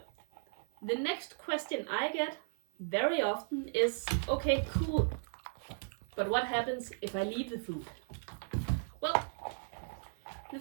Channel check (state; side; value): silent; left; 54 dB below the other